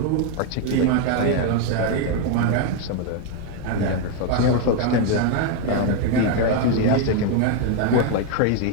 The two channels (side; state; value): both; different; correlation 0.01